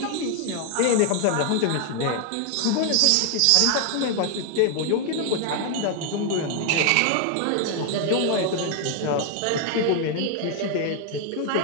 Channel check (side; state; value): both; different; correlation 0.00